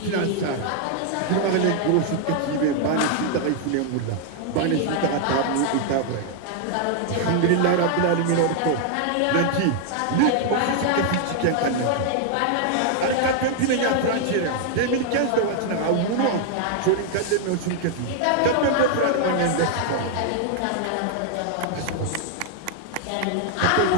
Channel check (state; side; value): different; both; correlation 0.00